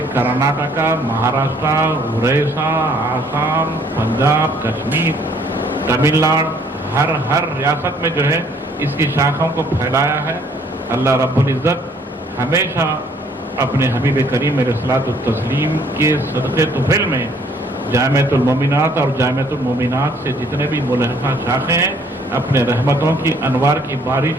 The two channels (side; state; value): both; normal; correlation 0.61